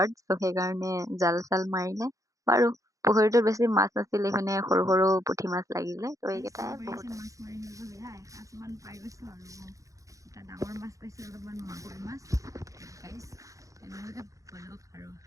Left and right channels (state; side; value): late; left; 0.16 ms